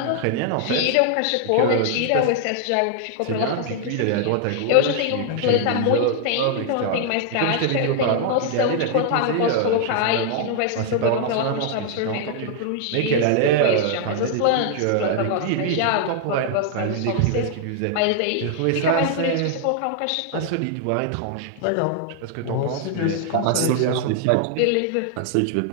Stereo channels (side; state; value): both; different; correlation 0.00